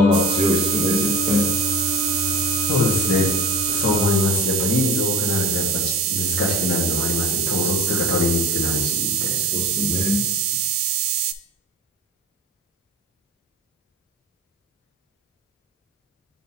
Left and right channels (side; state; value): both; normal; correlation 0.32